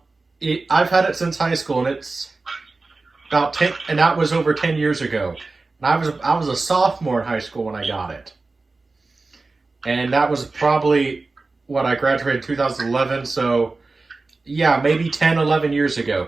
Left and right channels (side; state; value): left; quieter; 3.6 dB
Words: had it since high school, and it's about 10, and that was over 10 years ago. And I was a sophomore in high school when I got it. And that was probably what I graduated in 2011. So, yeah, maybe 10, 11 years ago,